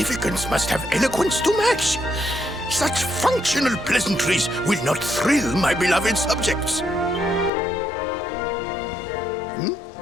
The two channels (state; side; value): drops out; right; at 7.5 s